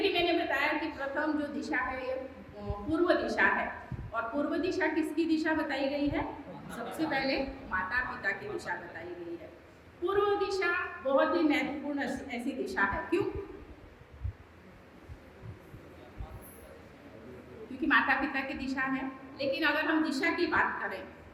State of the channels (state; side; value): identical; both; correlation 1.00